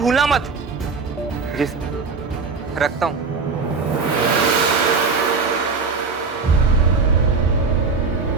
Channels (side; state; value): left; quieter; 4.7 dB